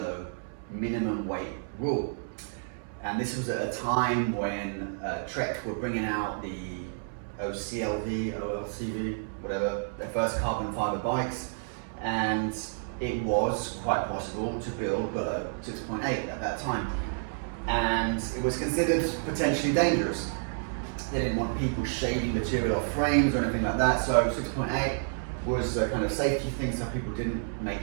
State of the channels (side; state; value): left; silent; 58 dB below the other